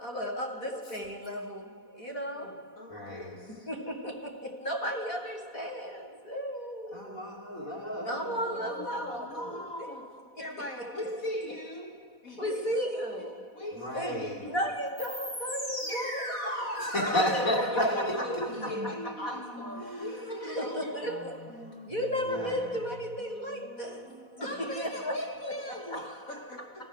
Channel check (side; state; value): right; late; 4.1 ms